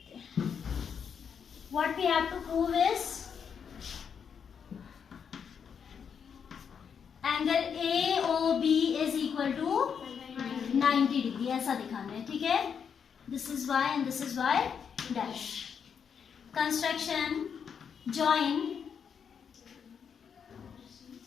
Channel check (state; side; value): quieter; right; 7.1 dB